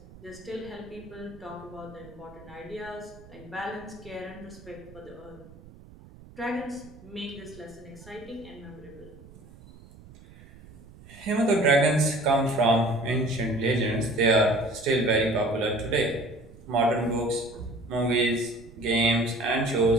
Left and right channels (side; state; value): right; noise; rumble, 21 dB below the sound